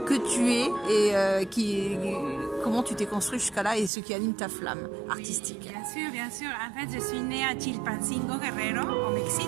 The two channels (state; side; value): drops out; left; at 3.9 s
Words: que tu es et comment tu t'es construit jusqu'à là et ce qui anime ta flamme artistique? Bien sûr, bien sûr. En fait, je suis née à Chilpancingo, Guerrero, au